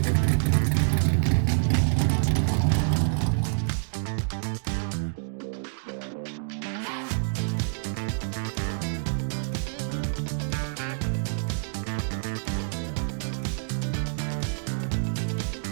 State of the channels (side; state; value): left; silent; digital silence